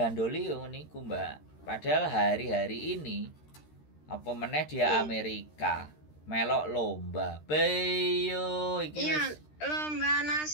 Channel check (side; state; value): right; late; 13 ms